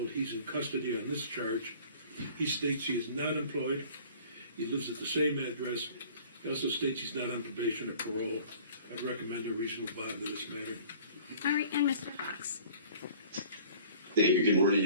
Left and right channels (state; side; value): inverted; both; correlation -0.49